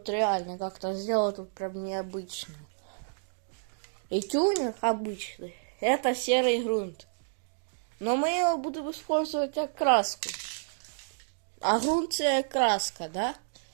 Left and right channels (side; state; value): left; silent; digital silence